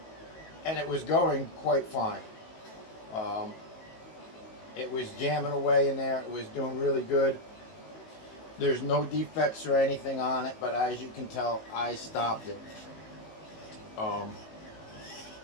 and it was going quite fine. It was jamming away in there. It was doing really good. There's no defects or anything on it, but as you can tell, I stopped it.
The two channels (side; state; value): right; late; 19 ms